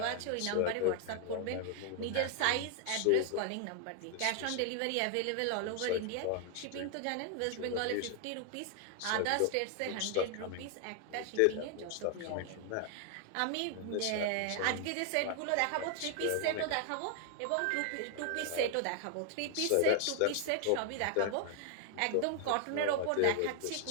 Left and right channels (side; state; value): both; different; correlation 0.00